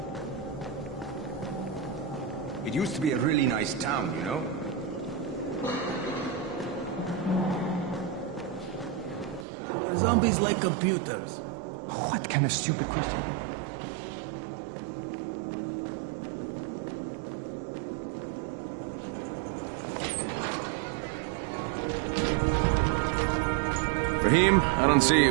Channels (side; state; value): left; drops out; at 9.5 s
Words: It used to be a really nice town, you know? How are zombies like computers? What kind of stupid question? Rahim, I don't see